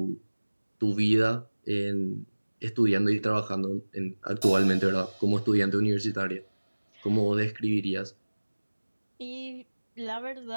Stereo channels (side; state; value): both; inverted; correlation -1.00